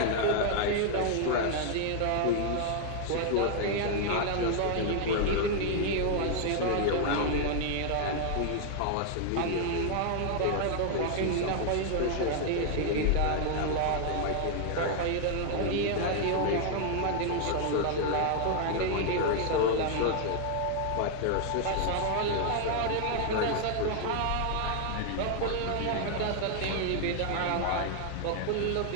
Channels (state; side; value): different; both; correlation 0.00